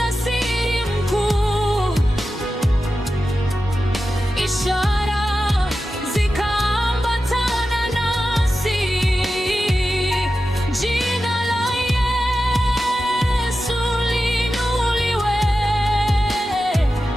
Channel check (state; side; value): normal; both; correlation 0.92